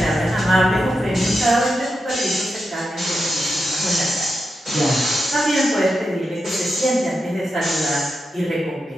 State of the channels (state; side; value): normal; both; correlation 0.88